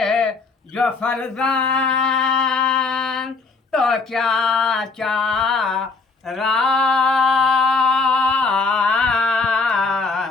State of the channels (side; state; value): right; quieter; 4.1 dB